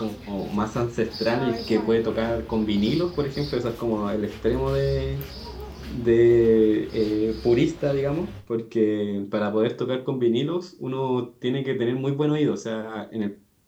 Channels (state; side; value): identical; both; correlation 1.00